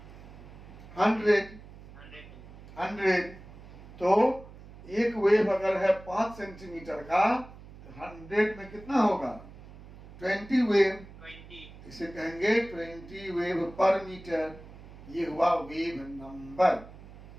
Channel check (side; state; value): right; noise; hum, 18 dB below the sound